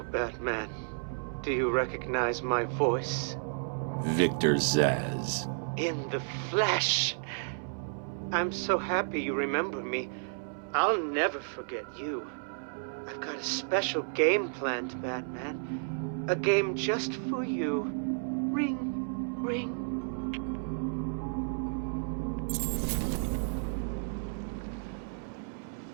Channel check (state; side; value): silent; left; 56 dB below the other